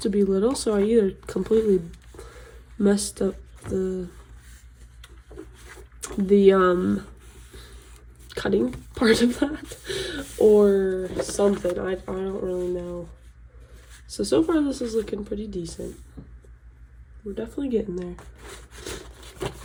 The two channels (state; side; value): identical; both; correlation 1.00